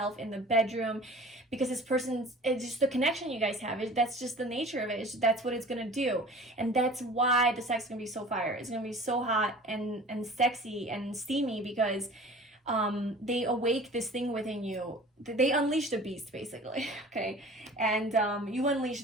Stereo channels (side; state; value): both; normal; correlation 0.43